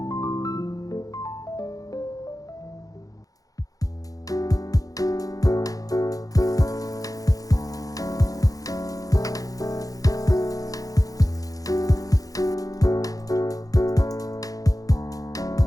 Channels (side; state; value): right; late; 0.17 ms